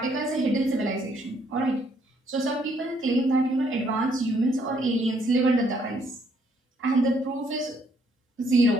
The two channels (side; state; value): both; normal; correlation 0.68